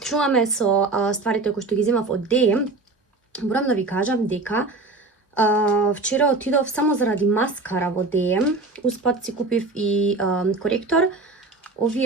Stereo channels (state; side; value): quieter; left; 3.4 dB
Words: Чуваме со стварите кои што ги земав од DM. Морам да ви кажам дека вчера отидов само заради маскара во DM. Успат си купив и коректор.